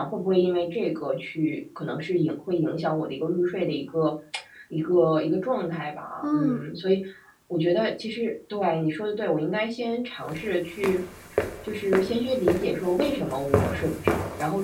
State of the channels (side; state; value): both; identical; correlation 1.00